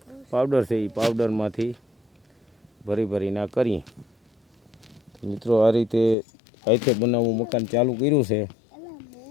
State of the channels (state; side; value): drops out; right; at 6.2 s